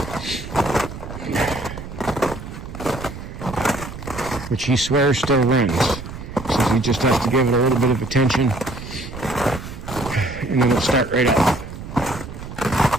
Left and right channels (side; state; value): right; noise; rumble, 11 dB below the sound